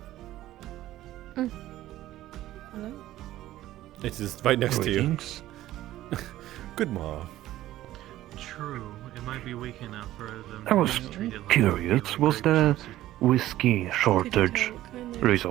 Hello? It is right next to you. Greetings. Good morning. True, it might be weak enough for them. I was to treat it like curious, was the whiskey shortage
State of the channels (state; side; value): quieter; left; 14.5 dB